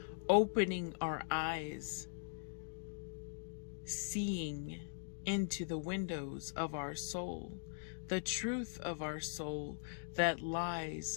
opening our eyes, seeing into the windows of our soul, the truth of our soul that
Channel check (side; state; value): right; silent; digital silence